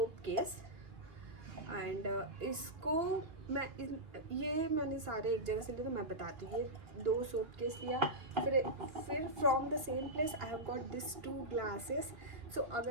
case and इसको ये मैंने सारे एक जगह से लिए तो मैं बताती हूँ। ये 2 सोप केस लिया, फिर from the same place I have got this 2 glasses. So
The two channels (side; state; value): left; late; 3.1 ms